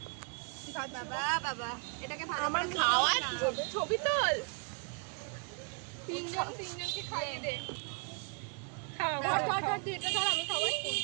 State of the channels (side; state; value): left; quieter; 39.1 dB